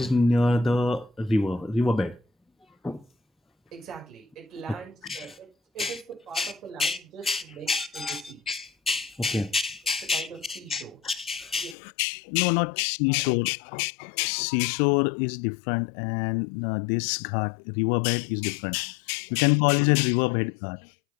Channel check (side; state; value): right; drops out; at 11.8 s